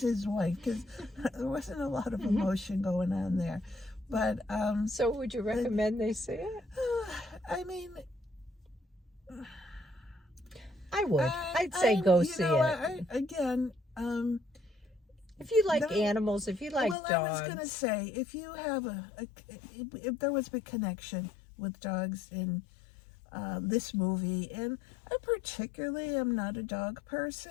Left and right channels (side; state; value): right; drops out; at 16.9 s